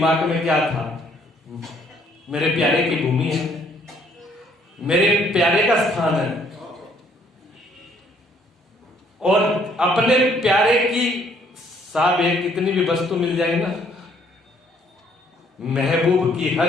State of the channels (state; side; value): normal; both; correlation 0.64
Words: में क्या था? मेरे प्यारे की भूमि है, मेरे प्यारे का स्थान है, और अपने प्यारे की साहब एक कितनी भी वस्तु मिल जाए ना, महबूब की